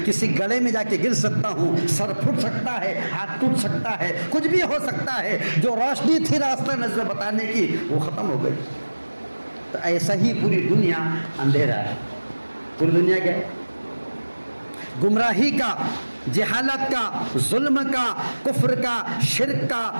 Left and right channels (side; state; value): both; inverted; correlation -1.00